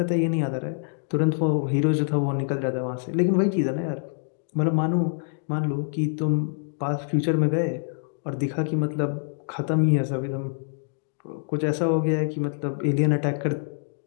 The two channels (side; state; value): right; silent; digital silence